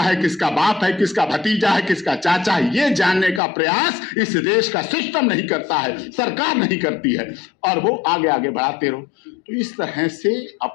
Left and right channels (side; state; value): right; drops out; at 3.4 s